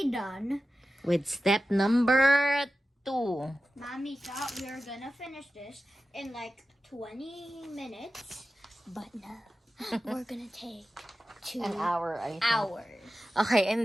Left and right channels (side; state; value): both; normal; correlation 0.93